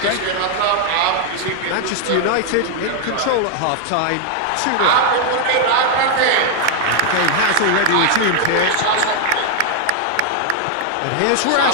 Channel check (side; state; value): both; different; correlation 0.00